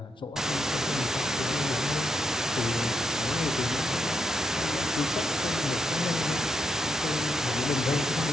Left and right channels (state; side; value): normal; both; correlation 0.80